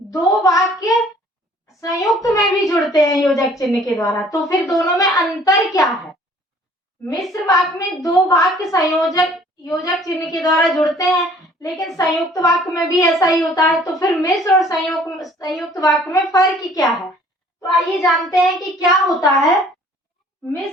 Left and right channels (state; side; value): normal; both; correlation 0.55